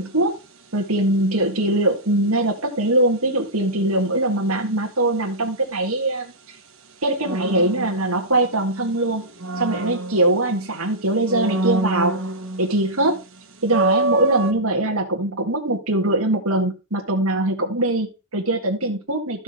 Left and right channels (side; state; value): both; normal; correlation -0.11